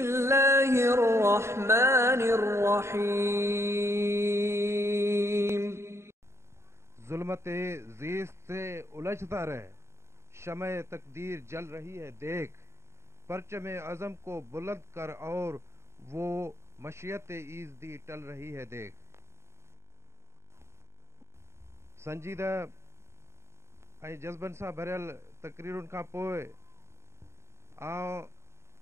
जुल्मते ज़ीस्त से उलझता रहे, शमए तकदीर जल रही है देख, परचमे अज़म को बुलंद कर और वो मशियत ईज़दी टल रही है देख। संजीदा ऐं जज़्बनि सां भरियल तक़रीरुनि खां पोइ आउं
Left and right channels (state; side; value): late; left; 0.13 ms